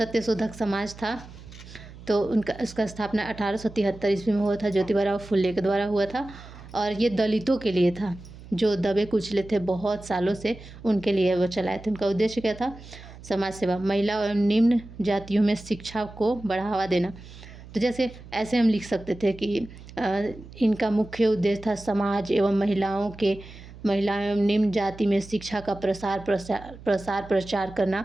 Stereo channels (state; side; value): noise; right; hum, 17 dB below the sound